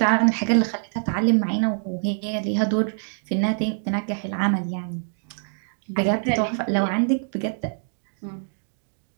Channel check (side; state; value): left; silent; digital silence